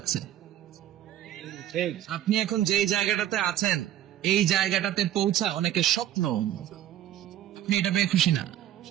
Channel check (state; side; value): quieter; left; 11.9 dB